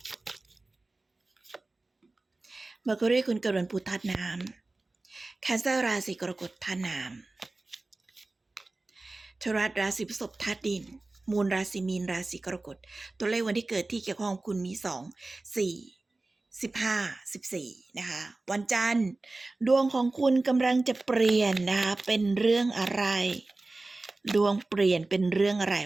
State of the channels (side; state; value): left; quieter; 3.1 dB